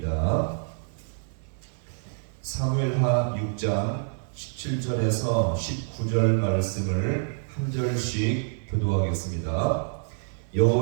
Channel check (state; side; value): silent; left; 60 dB below the other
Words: 사무엘하 6장 17절에서 19절 말씀을 한 절씩 교도하겠습니다.